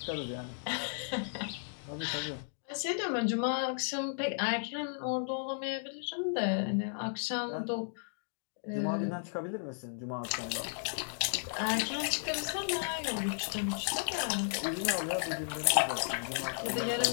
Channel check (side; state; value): right; silent; digital silence